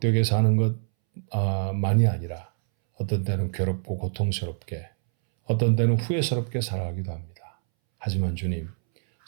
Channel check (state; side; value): silent; left; 61 dB below the other